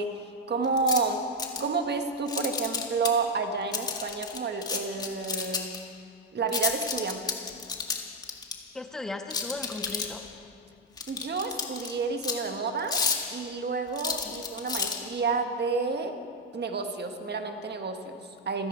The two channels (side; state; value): both; normal; correlation 0.03